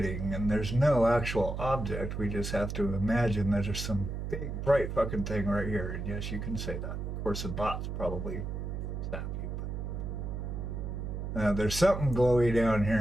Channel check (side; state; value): right; noise; hum, 4 dB below the sound